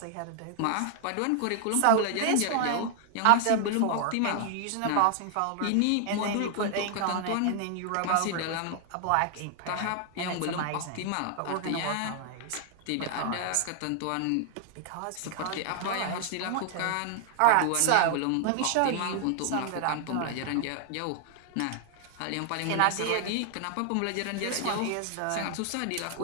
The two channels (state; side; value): different; both; correlation 0.00